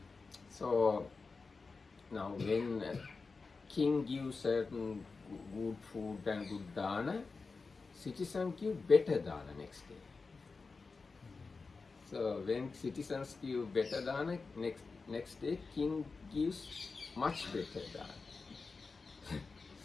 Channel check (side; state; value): right; quieter; 4.3 dB